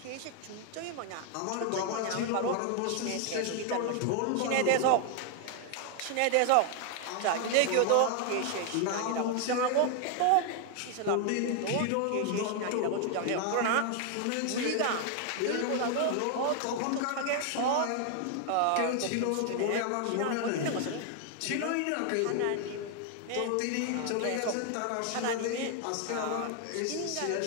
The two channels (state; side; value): different; both; correlation 0.00